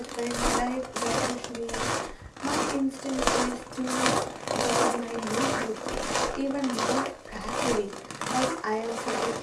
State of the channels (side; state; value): both; identical; correlation 1.00